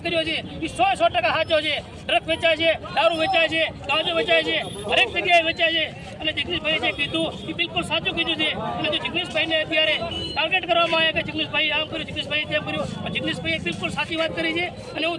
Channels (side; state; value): both; identical; correlation 1.00